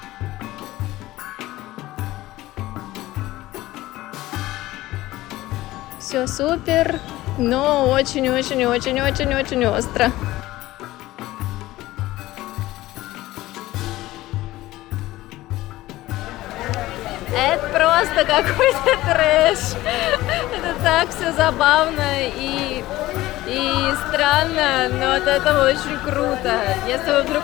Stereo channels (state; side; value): quieter; right; 17.0 dB